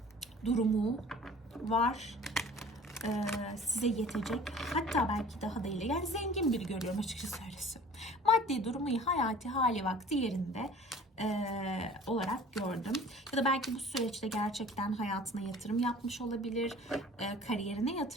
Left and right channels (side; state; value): both; normal; correlation 0.47